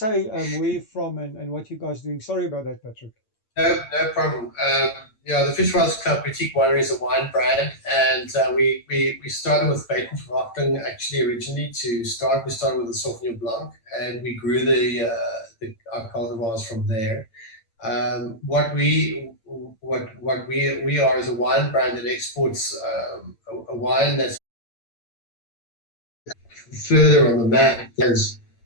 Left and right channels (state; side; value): late; right; 8.9 ms